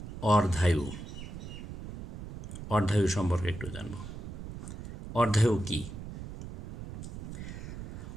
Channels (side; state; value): right; noise; rumble, 9 dB below the sound